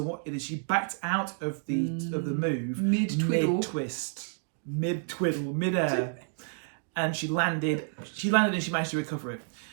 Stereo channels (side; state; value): left; silent; digital silence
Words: backed out of the move mid-air, and she landed and she managed to recover it.